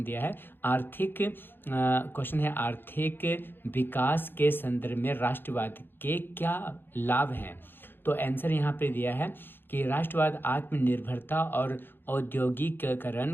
दिया है, आर्थिक विकास के संदर्भ में राष्ट्रवाद के क्या लाभ हैं। तो आंसर यहाँ पे दिया है कि राष्ट्रवाद आत्मनिर्भरता और औद्योगिकीकरण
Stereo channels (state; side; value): late; right; 0.10 ms